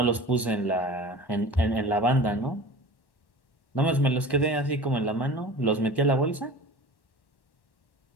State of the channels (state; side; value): late; right; 1.1 ms